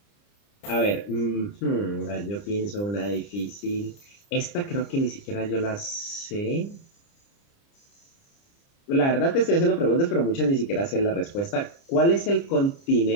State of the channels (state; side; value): late; right; 30 ms